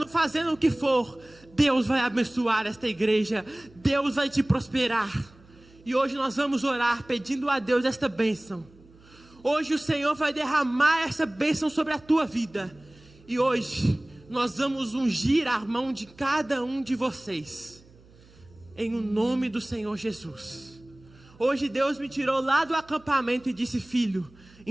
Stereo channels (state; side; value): noise; right; hum, 26 dB below the sound